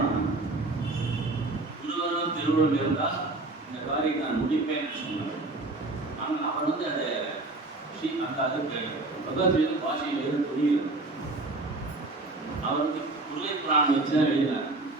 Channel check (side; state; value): left; quieter; 3.0 dB